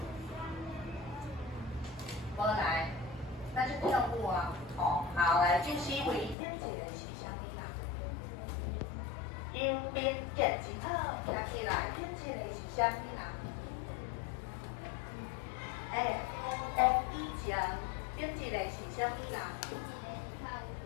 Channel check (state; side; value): drops out; right; at 6.4 s